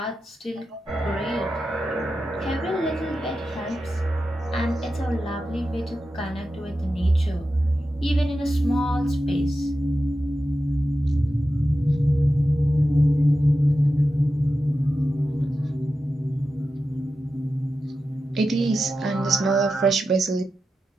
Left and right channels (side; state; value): both; normal; correlation 0.91